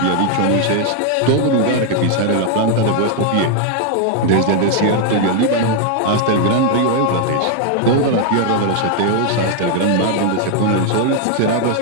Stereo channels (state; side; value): different; both; correlation 0.00